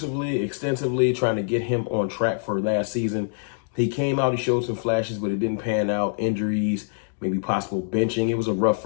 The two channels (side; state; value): right; silent; digital silence